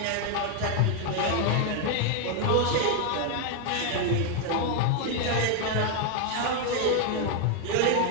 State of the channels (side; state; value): both; different; correlation 0.01